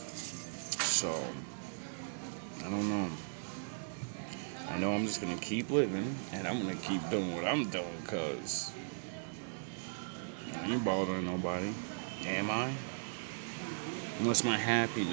So, I don't know. I know I'm just going to keep living, and I'm going to keep doing what I'm doing, because I ain't bothering nobody. Am I? Unless my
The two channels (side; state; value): left; silent; 53 dB below the other